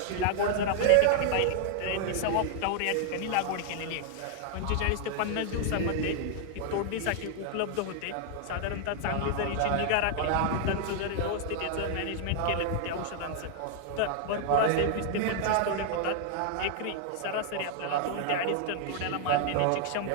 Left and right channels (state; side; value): different; both; correlation 0.00